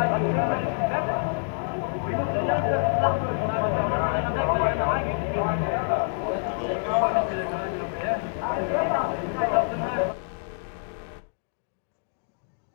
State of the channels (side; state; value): right; silent; digital silence